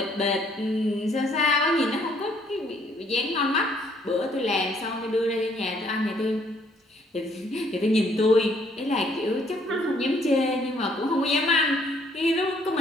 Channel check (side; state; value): both; normal; correlation 0.65